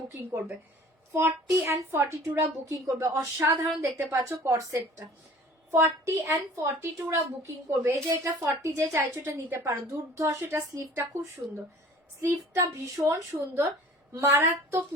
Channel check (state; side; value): normal; both; correlation 0.47